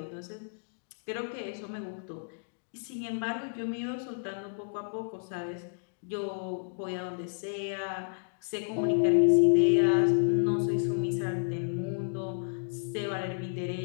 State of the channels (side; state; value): right; silent; digital silence